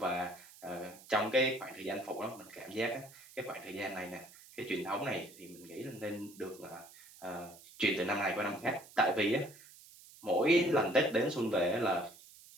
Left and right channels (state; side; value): noise; right; hiss, 21 dB below the sound